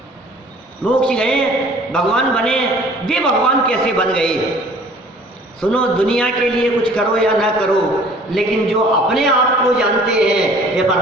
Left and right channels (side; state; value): both; normal; correlation 0.51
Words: मोक्ष गए, भगवान बने। वे भगवान कैसे बन गए? सुनो, दुनिया के लिए कुछ करो या ना करो, लेकिन जो अपने आप को जानते हैं ये